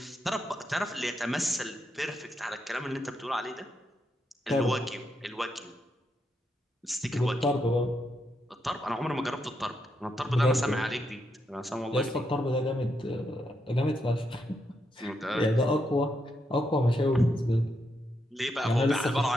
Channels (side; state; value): both; normal; correlation 0.81